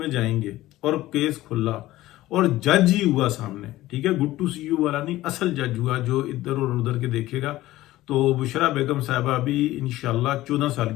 जाएंगे और केस खुला और जज ही हुआ सामने, ठीक है, गुड टू सी यू वाला नहीं, असल जज हुआ जो इधर और उधर के देखेगा, तो बुशरा बेगम साहबा भी इंशाल्लाह 14 साल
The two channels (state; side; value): quieter; right; 16.3 dB